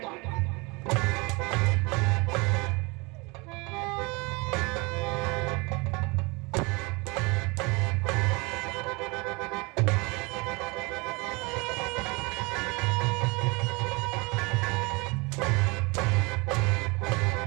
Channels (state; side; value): quieter; left; 27.1 dB